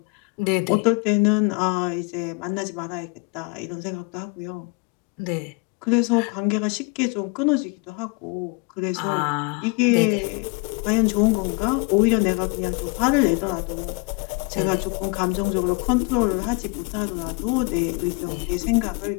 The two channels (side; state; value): right; quieter; 29.6 dB